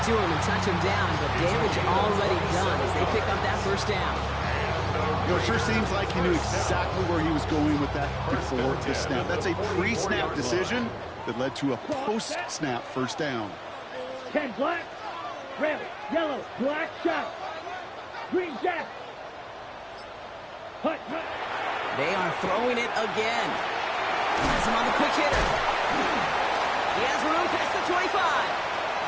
to him and touch him down, but damage already done as they pick up that 1st down. It sure seems like he knew exactly where he was going with that before the snap. That's a pre-snap decision that led to a post-snap 1st down. 10 black, red, yellow, black shot. Green jack. Hut. They are throwing it again. Has him on the quick hitter. He has room past the 25.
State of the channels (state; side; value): identical; both; correlation 1.00